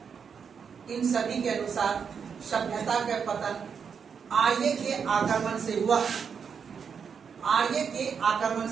इन सभी के अनुसार सभ्यता का पतन आर्य के आक्रमण से हुआ, आर्य के आक्रमण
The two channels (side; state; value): left; quieter; 6.6 dB